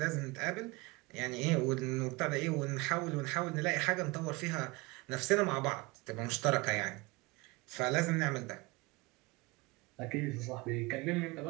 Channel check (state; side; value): quieter; left; 24.5 dB